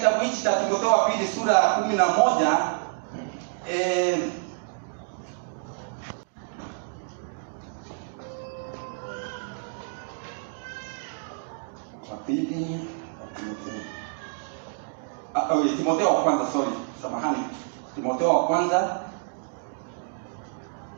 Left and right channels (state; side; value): silent; left; digital silence